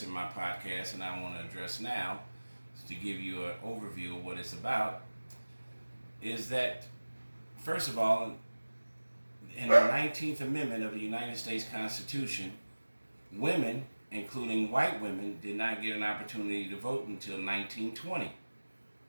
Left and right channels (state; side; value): inverted; both; correlation -1.00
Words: in my podcast and I want to address now, to give you an overview of what it's about, is that, first of all, in the 19th Amendment of the United States Constitution, women, including white women, did not get an opportunity to vote until 1920.